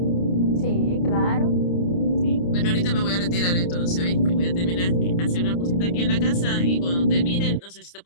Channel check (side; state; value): right; late; 29 ms